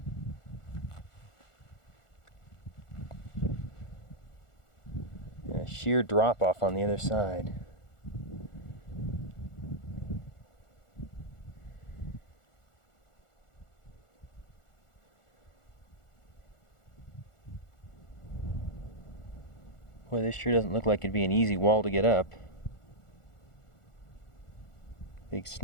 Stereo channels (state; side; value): late; right; 1.4 ms